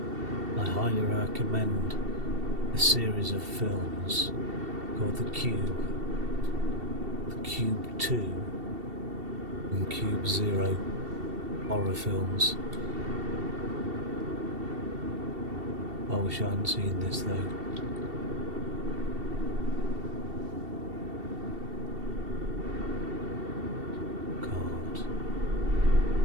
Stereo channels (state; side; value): late; left; 2.7 ms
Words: I highly recommend a series of films called The Cube, The Cube 2 and Cube 0 horror films. I wish I hadn't seen this though. God.